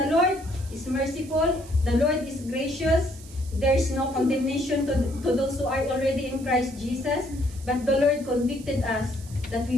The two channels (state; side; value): noise; right; hiss, 20 dB below the sound